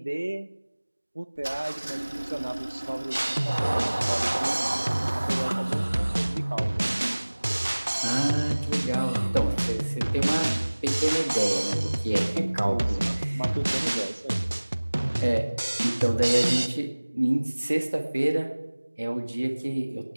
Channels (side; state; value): both; inverted; correlation -1.00